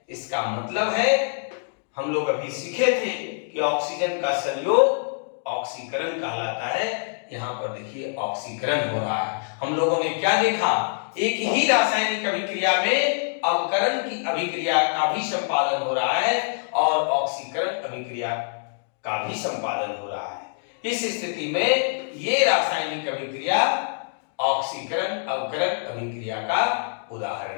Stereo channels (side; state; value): right; silent; digital silence